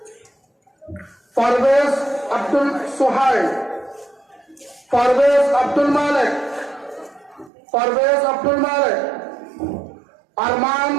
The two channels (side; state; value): left; drops out; at 7.5 s